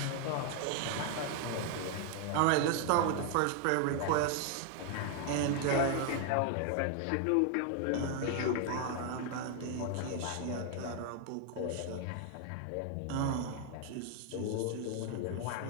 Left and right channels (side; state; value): both; different; correlation 0.00